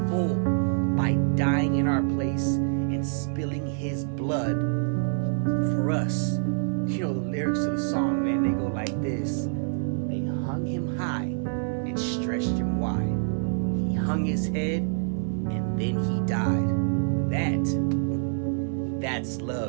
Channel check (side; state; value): left; silent; digital silence